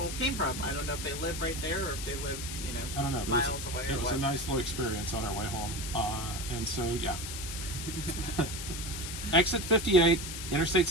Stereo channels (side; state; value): left; noise; hiss, 7 dB below the sound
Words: came from. I don't know if they live right there or if they live, I don't know. miles away. It was a nice little experience on our way home, and so Exit 58, Interstate